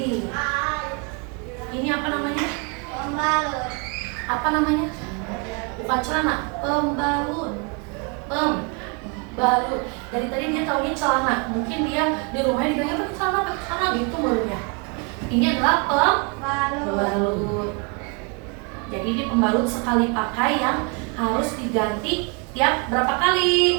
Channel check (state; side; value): quieter; left; 33.7 dB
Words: Ini apa namanya? Pembalut. Apa namanya? Bukan celana, pembalut. Pembalut. Dari tadi dia taunya celana. Mungkin dia di rumahnya digaya pakai celana gitu menurutnya. Ini adalah pembalut. Jadi ini pembalut sekali pakai yang harus diganti tiap berapa